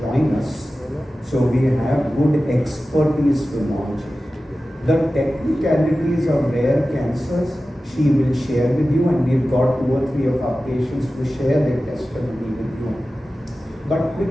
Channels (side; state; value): both; normal; correlation 0.95